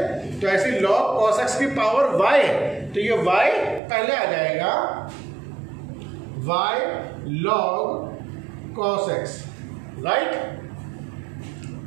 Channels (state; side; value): drops out; left; at 3.8 s